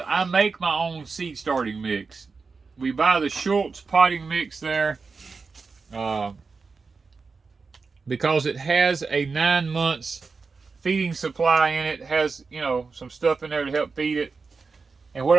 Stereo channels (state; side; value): quieter; left; 4.6 dB